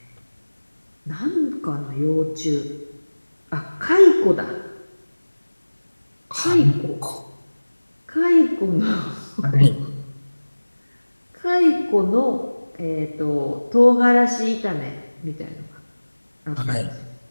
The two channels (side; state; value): both; inverted; correlation -1.00